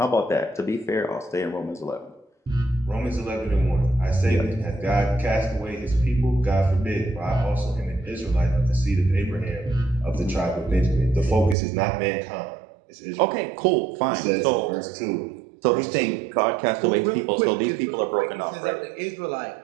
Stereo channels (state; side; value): drops out; left; at 11.6 s